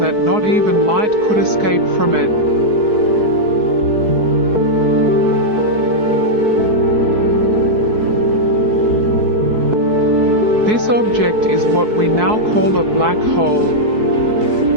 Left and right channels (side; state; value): left; late; 4.6 ms